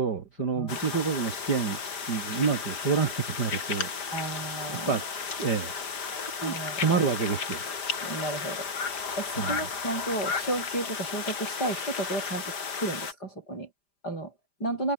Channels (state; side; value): late; right; 5.0 ms